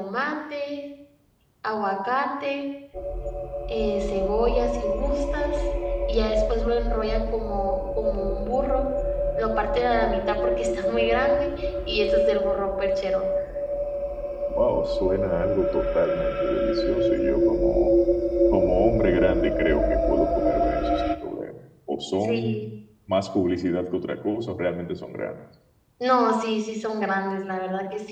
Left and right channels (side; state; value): both; identical; correlation 1.00